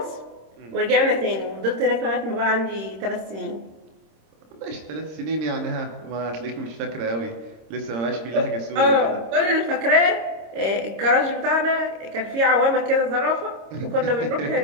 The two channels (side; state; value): left; late; 26 ms